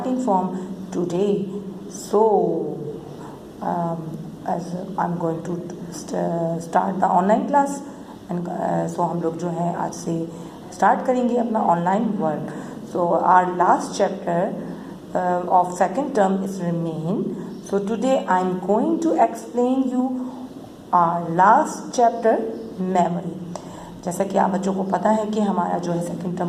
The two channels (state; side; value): identical; both; correlation 1.00